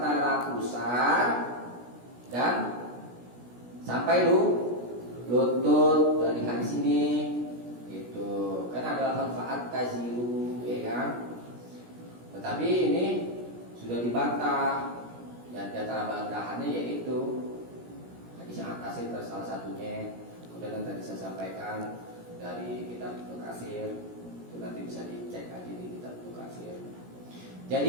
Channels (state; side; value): late; left; 17 ms